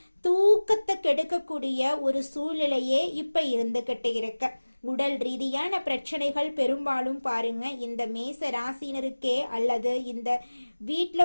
தூக்கத்தை கெடுக்கக்கூடிய ஒரு சூழ்நிலையே இப்ப இருந்துகிட்டு இருக்கு. உடல் ரீதியான பிரச்சனைகள் பெரும்பாலும் பாருங்க இந்த மேச ராசினருக்கே அல்லது இந்த வீட்டில்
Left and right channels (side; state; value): both; inverted; correlation -1.00